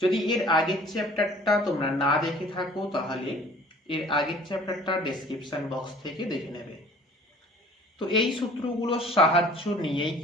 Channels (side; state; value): both; normal; correlation 0.50